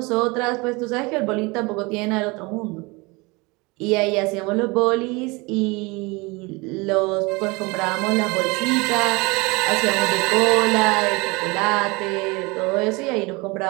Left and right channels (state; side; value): quieter; left; 25.8 dB